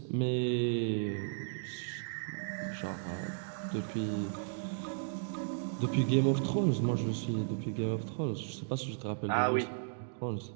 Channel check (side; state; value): left; silent; digital silence